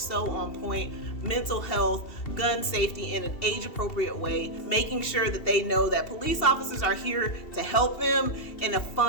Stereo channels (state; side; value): late; right; 2.7 ms